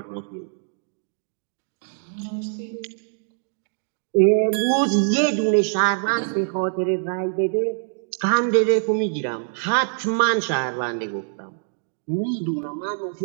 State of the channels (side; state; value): left; silent; digital silence